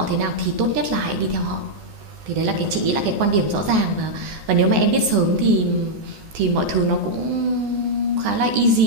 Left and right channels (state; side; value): late; left; 15 ms